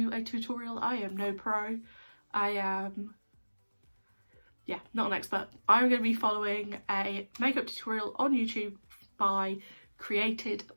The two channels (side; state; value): both; inverted; correlation -1.00